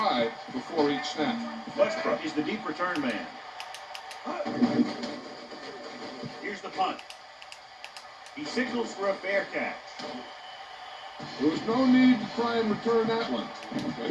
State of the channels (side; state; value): both; identical; correlation 1.00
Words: before each snap. Westbrook is the deep return man. Here's the punt. He signals for a fair catch. There was no need to try and return that one, but